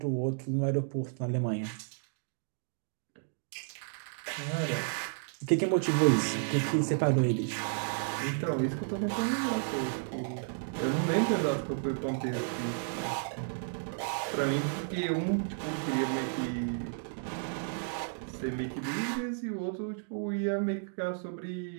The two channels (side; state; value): left; silent; digital silence